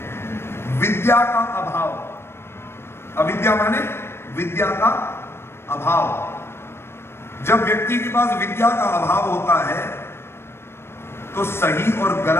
विद्या का अभाव। अविद्या माने विद्या का अभाव। जब व्यक्ति के पास विद्या का अभाव होता है तो सही और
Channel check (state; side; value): late; right; 0.12 ms